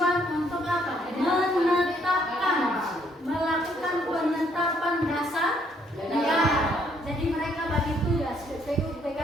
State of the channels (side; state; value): both; normal; correlation 0.68